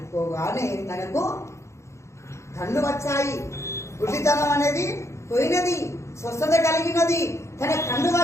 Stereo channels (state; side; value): late; right; 0.14 ms